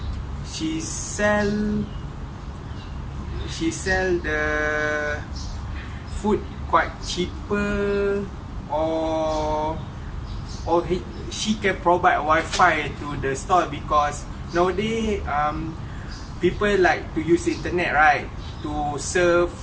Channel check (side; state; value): both; identical; correlation 1.00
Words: she sell the food quite cheaper, or she can provide Wi-Fi to the store because nowadays people like to use internet, right? To surf,